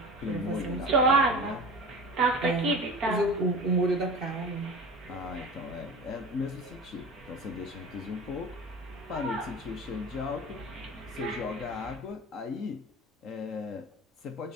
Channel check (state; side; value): normal; both; correlation 0.34